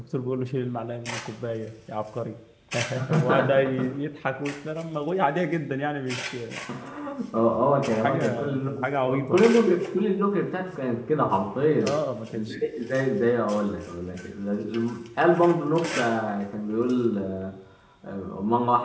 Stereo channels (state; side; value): identical; both; correlation 1.00